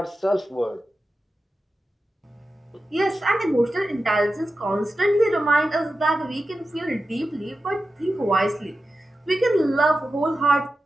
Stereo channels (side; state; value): both; normal; correlation 0.92